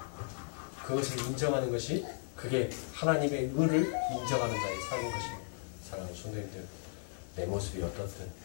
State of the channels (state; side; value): silent; right; digital silence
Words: 그것을 인정하는 것이 그게 하나님의 의를 인정하는 자의 삶인 것입니다. 사랑하는 성도님들, 내 모습이 어떻든